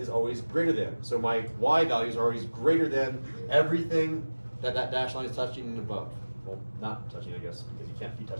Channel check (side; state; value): both; inverted; correlation -1.00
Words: always greater than. So my y values are always greater than everything that dash line is touching and above. Well, not touching, I guess, because you can't be